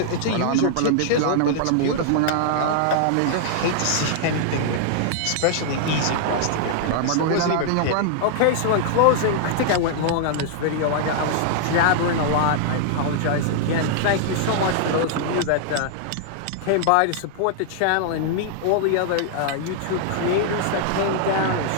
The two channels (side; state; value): both; different; correlation -0.01